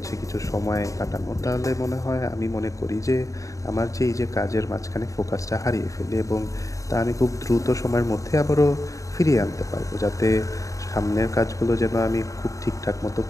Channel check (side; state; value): right; late; 0.16 ms